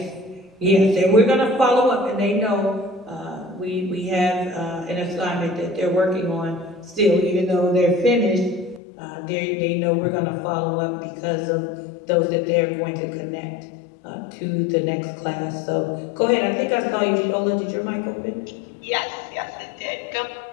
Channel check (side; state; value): right; drops out; at 8.8 s